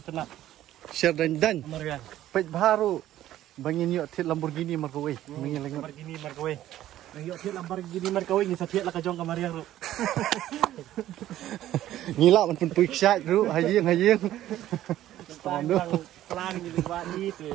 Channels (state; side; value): quieter; left; 13.3 dB